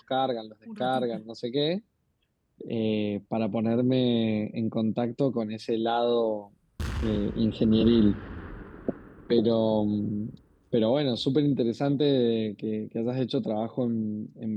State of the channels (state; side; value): identical; both; correlation 1.00